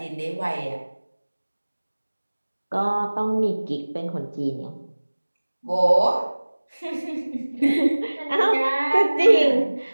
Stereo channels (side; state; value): both; inverted; correlation -1.00